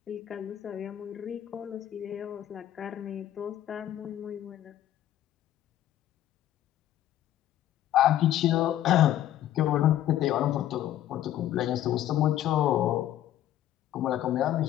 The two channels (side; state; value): right; quieter; 12.3 dB